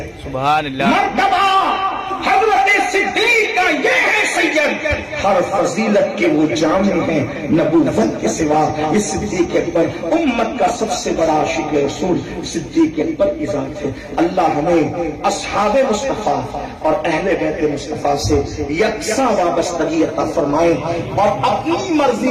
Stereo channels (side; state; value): both; identical; correlation 1.00